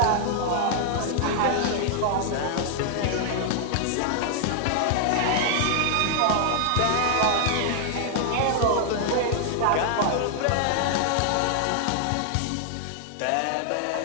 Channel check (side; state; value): both; different; correlation -0.01